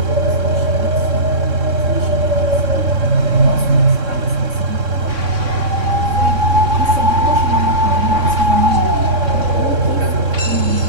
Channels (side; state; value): left; late; 3.6 ms